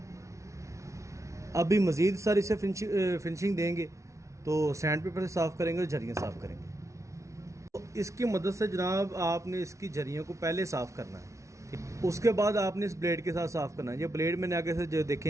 अभी मज़ीद सर इसे फिनिशिंग देंगे तो सैंड पेपर से साफ़ करेंगे और झरियाँ साफ़ करेंगे। इसकी मदद से जनाब आपने इसकी झरियों को पहले साफ़ करना है। उसके बाद आपने इस ब्लेड के साथ साफ़ करना है। ये ब्लेड मैंने आगे से जो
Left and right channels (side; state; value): left; late; 0.14 ms